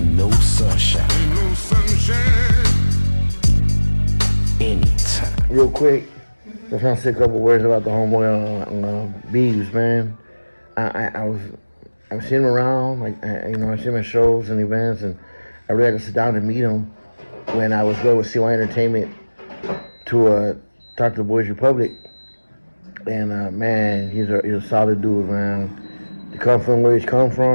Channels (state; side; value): inverted; both; correlation -1.00